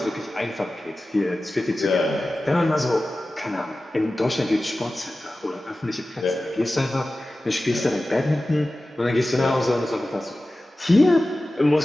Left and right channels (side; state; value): both; normal; correlation 0.95